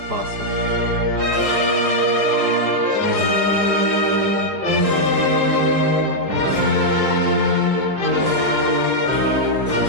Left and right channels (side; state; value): left; late; 4.7 ms